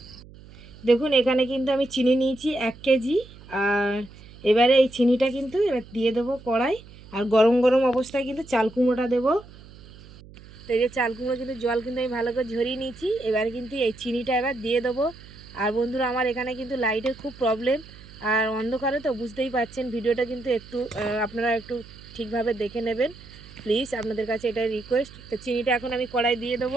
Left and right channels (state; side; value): noise; right; hum, 20 dB below the sound